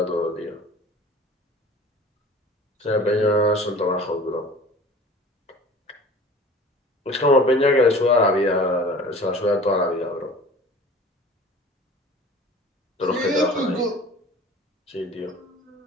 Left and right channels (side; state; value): both; normal; correlation 0.43